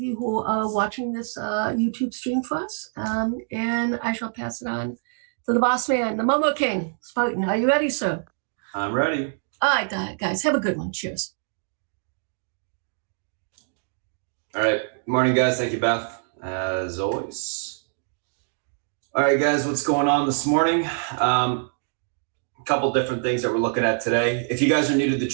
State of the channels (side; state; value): left; silent; digital silence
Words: who are watching this YouTube stream for us. And I shall pass it on to the boss man, the Momo King, Spartan. Are you ready, sir? I'm ready. All right, guys, have a good one. Cheers. All right. Good morning, guys. Thank you, Beth, as always. All right, guys, what's going on this morning? A couple different things that we're looking at today. If you guys are new to the